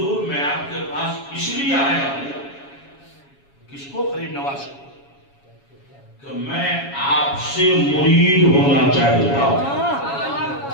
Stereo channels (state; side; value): late; right; 7.2 ms